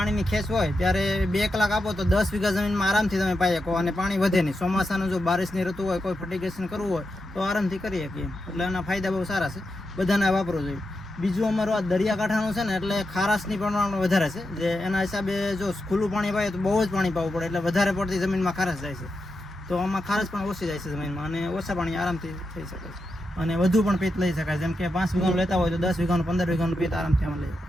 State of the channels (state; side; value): normal; both; correlation 0.87